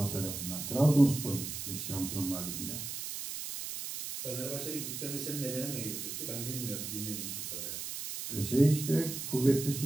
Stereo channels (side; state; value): right; noise; hiss, 6 dB below the sound